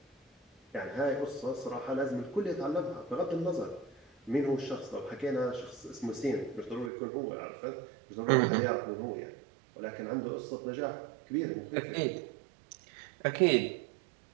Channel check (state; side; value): drops out; left; at 6.9 s